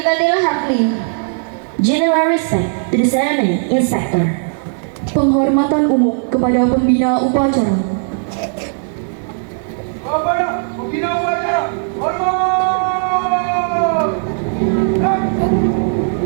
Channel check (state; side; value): silent; left; digital silence